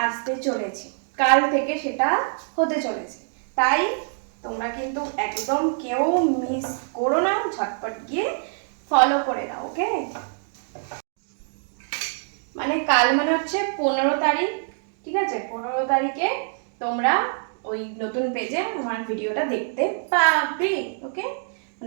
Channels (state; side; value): silent; left; digital silence